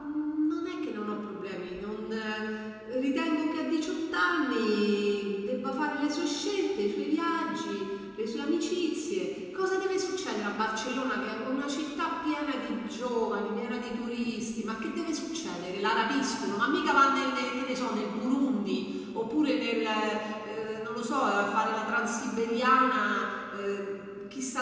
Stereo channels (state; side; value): identical; both; correlation 1.00